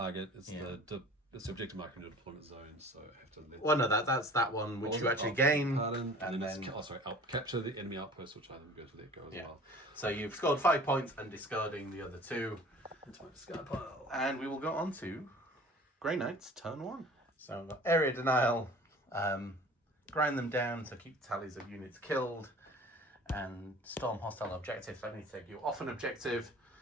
is it's the objective marker in the deployment zone, so I have to. Well, no, that's that one which you actually gain. Pardon, and then capture the enemy outpost, which I then go to let go as well. So you've scored 5 points and discarding the other 2. Into my discard pile. And we will go on to Grey Knights turn 1. So we've got area denial, grind them down to keep tallies of units killed, and storm hostile objectives. I need to take you off an objective.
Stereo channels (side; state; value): both; normal; correlation 0.45